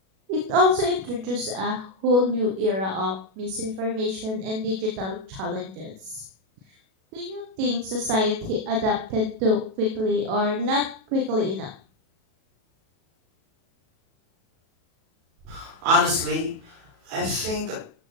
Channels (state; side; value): late; left; 37 ms